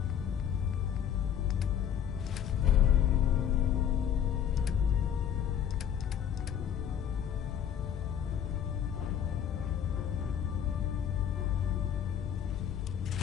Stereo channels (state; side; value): quieter; right; 9.2 dB